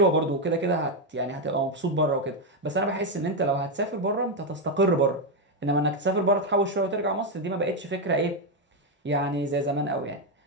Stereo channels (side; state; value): both; normal; correlation 0.05